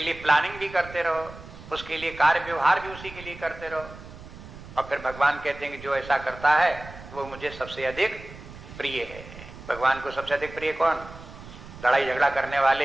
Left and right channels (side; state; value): right; noise; rumble, 16 dB below the sound